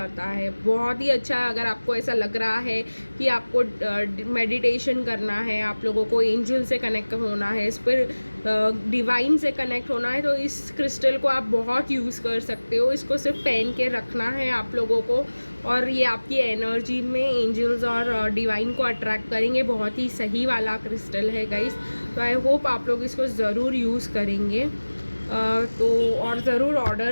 है। बहुत ही अच्छा है। अगर आपको ऐसा लग रहा है कि आपको मेडिटेशन करना है, आप लोगों को एंजल से कनेक्ट होना है, इस पर डिवाइन से कनेक्ट होना है, तो इस क्रिस्टल को आप बहुत यूज़ कर सकते हो। इसको सिर्फ पहन के रखना है आप लोगों को और ये आपकी एनर्जी में एंजल्स और डिवाइन को अट्रैक्ट करेंगे। बहुत ही सही वाला क्रिस्टल है गाइस। तो आई होप आप लोग इसको ज़रूर यूज़ करेंगे तो और ज़रूर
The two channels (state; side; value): inverted; both; correlation -1.00